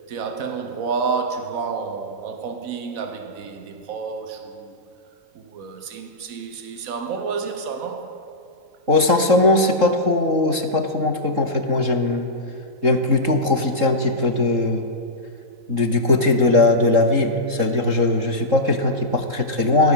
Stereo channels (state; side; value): late; left; 3.7 ms